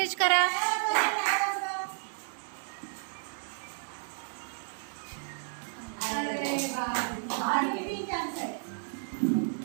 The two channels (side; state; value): left; silent; digital silence